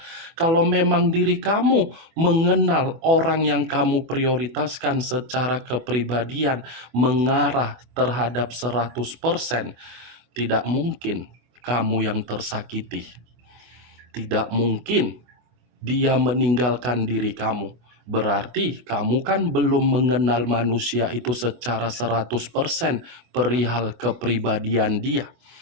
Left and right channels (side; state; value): left; late; 24 ms